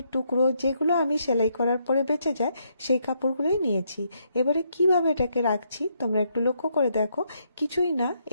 টুকরো যেগুলো আমি সেলাই করার পরে বেঁচে যায় সেই কাপড়গুলোই নিয়েছি। এবারে কিভাবে এটাকে রাখছি তোমরা একটু লক্ষ্য করে দেখো। কিছুই না,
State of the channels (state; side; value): inverted; both; correlation -0.75